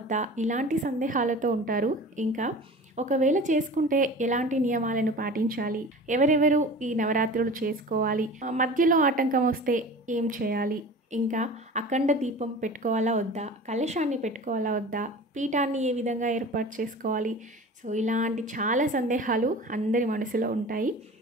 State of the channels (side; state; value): both; normal; correlation 0.38